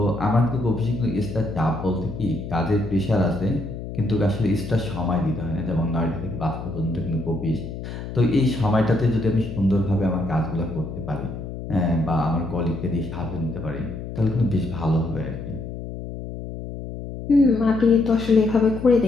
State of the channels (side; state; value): left; noise; hum, 9 dB below the sound